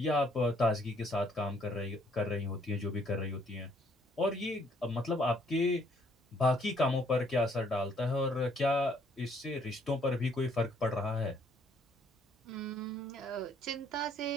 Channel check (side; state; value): both; normal; correlation 0.66